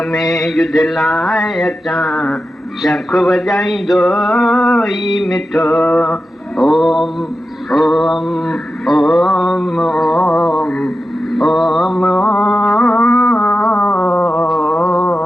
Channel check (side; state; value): both; normal; correlation 0.92